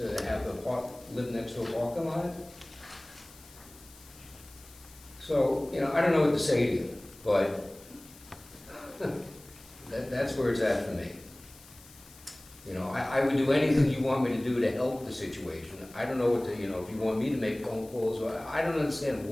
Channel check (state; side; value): noise; left; hiss, 22 dB below the sound